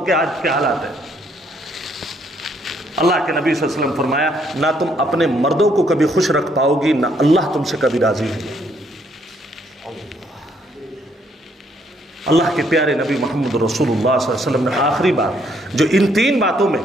آج کے حالات ہیں۔ اللہ کے نبی صلی اللہ علیہ وسلم فرمایا، نہ تم اپنے مردوں کو کبھی خوش رکھ پاؤ گی، نہ اللہ تم سے کبھی راضی ہے۔ اللہ کے پیارے نبی محمد رسول اللہ صلی اللہ علیہ وسلم نے آخری بات جو ان تین باتوں میں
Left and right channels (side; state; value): both; normal; correlation 0.69